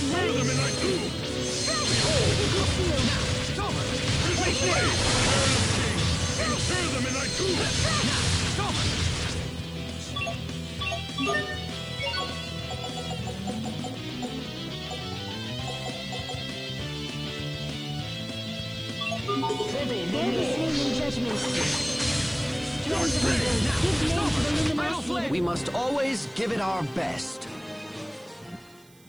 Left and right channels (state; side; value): noise; right; hiss, 28 dB below the sound